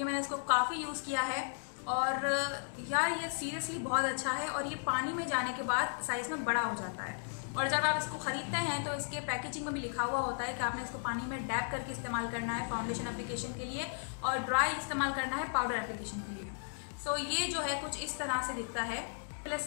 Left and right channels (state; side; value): silent; right; digital silence